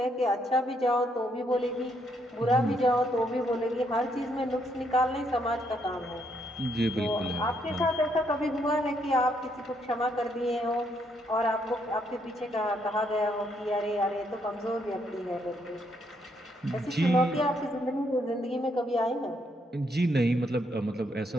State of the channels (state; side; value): normal; both; correlation 0.74